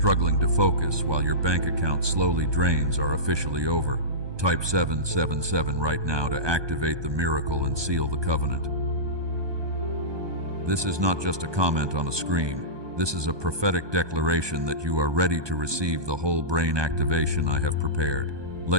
to focus while your bank account slowly drains are officially over. Type 777 right now to activate the miracle and seal the covenant. This is not just a comment on a screen. This is a prophetic declaration that you are ready to receive the whole brain activation I have prepared.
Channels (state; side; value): late; left; 1.2 ms